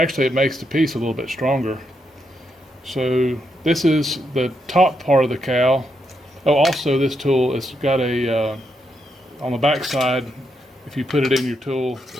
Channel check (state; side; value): normal; both; correlation 0.80